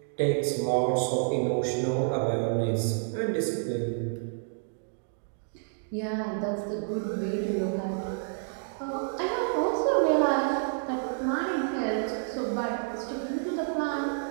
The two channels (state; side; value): silent; left; digital silence